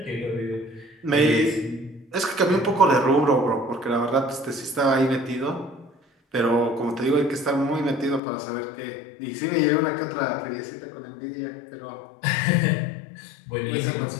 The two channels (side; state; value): right; drops out; at 8.2 s